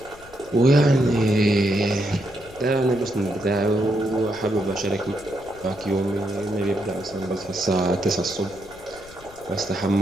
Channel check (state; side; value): noise; left; rumble, 22 dB below the sound